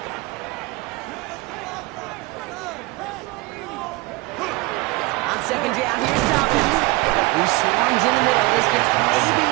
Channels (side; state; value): left; quieter; 22.9 dB